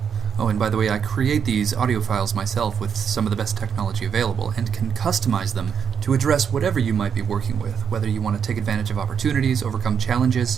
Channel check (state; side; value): quieter; left; 7.3 dB